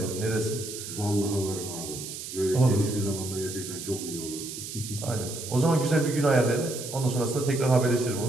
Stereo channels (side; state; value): right; noise; hiss, 9 dB below the sound